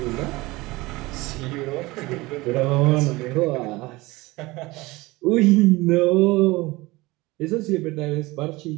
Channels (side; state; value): left; quieter; 21.3 dB